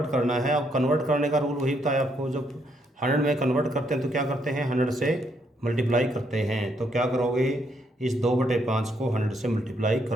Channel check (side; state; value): both; normal; correlation 0.74